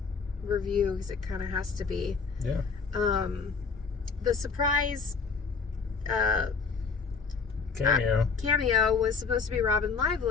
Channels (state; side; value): quieter; right; 5.2 dB